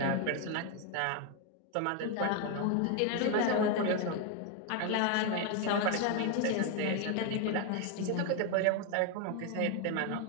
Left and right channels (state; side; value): different; both; correlation 0.01